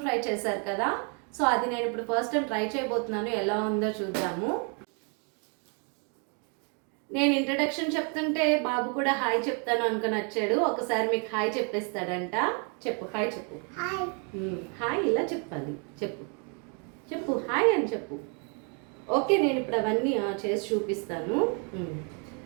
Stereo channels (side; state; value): left; quieter; 38.1 dB